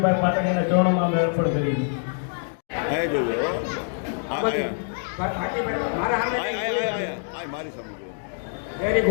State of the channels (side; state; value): right; silent; digital silence